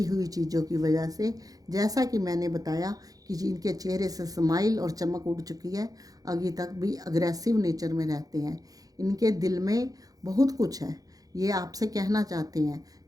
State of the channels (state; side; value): late; left; 0.18 ms